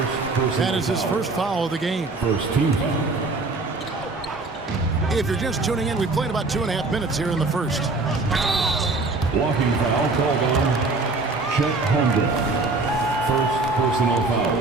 That is his first foul of the game. First team foul. If you're just tuning in, we've played about 2.5 minutes here in the first. Blocking foul called on Chet Holmgren. First personal foul.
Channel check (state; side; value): quieter; left; 3.5 dB